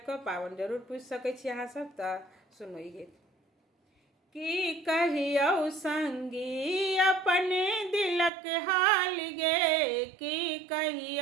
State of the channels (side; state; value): left; drops out; at 8.3 s